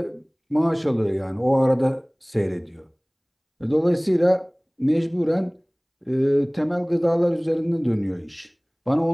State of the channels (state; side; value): identical; both; correlation 1.00